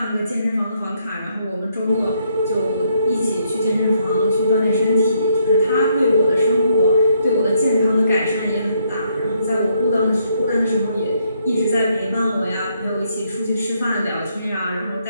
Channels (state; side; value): inverted; both; correlation -0.73